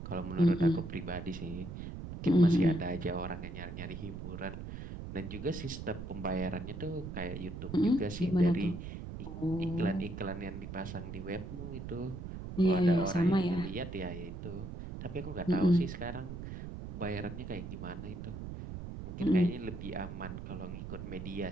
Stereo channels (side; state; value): right; noise; rumble, 8 dB below the sound